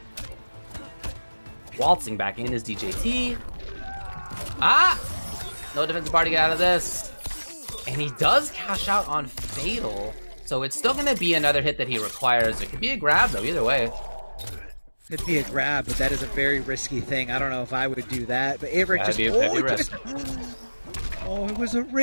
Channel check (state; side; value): inverted; both; correlation -1.00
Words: Waltzing back in is DJT. Ah! No defensive bar to get out of this. And he does cash out on Fatal. So it's still going to be another hit that he requires. It could be a grab, though, either way. Could be a grab, but that is a very risky thing. I don't know if I would do that. But Averick just... Oh, it was a